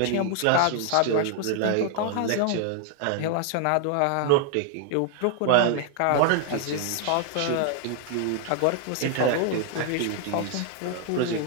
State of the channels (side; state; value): both; different; correlation 0.00